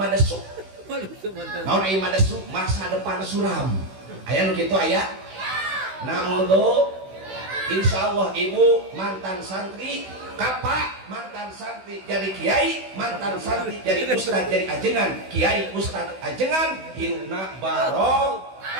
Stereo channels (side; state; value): left; late; 16 ms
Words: naon ieu madesuk masa depan suram aya nu kitu aya naudzu insyaallah ibu mantan santri kapak mantan santri jadi kiai mantan santri jadi ustad jadi ajengan kiai ustad ajengan hirupna barok